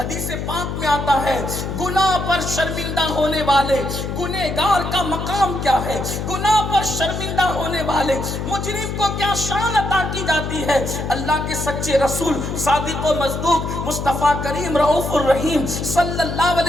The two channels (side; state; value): left; noise; hum, 4 dB below the sound